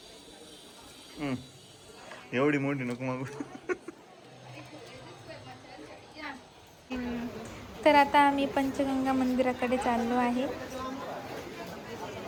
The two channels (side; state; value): both; identical; correlation 1.00